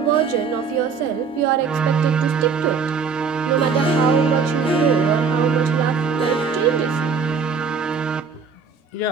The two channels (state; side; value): quieter; left; 5.6 dB